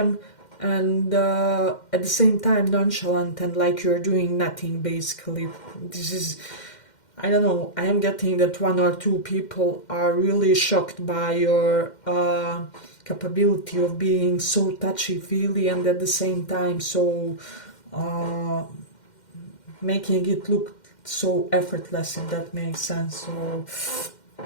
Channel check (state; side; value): late; right; 2.1 ms